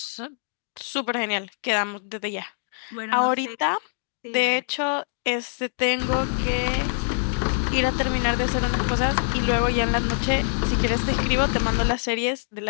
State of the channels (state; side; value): silent; right; digital silence